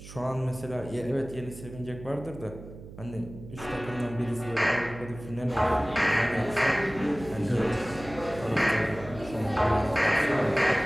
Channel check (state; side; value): noise; right; hum, 15 dB below the sound